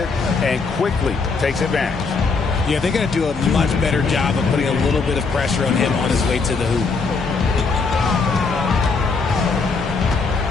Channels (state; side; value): quieter; right; 4.5 dB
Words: and quickly takes advantage. Yeah, they're going to do a much better job of putting a little bit of pressure on him on his way to the hoop.